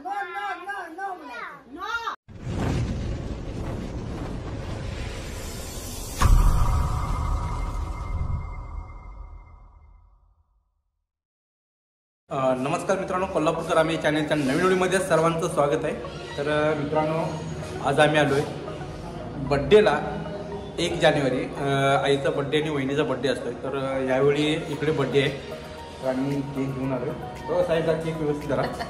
नमस्कार मित्रांनो, कोल्हापूरकर आम्ही चॅनलच्या नवीन व्हिडिओमध्ये सर्वांचं स्वागत आहे. तर मित्रांनो, आज आम्ही आलो आहे बड्डेला. 1 जानेवारी आईचा बड्डे आणि वहिनीचा बड्डे असतोय. तर यावेळी इकडे बड्डे आहे तर आम्ही केक घेऊन आलो आहे. हो साईडला केक व्यवस्थित करा.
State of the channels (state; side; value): identical; both; correlation 1.00